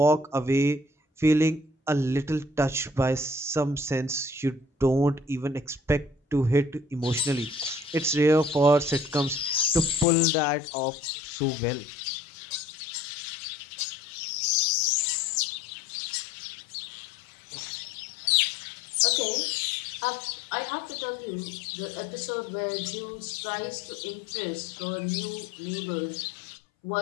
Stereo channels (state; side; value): drops out; right; at 10.1 s